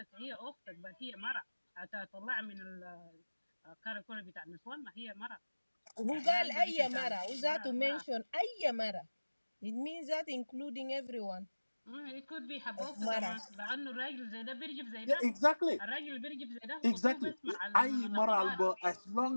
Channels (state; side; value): inverted; both; correlation -1.00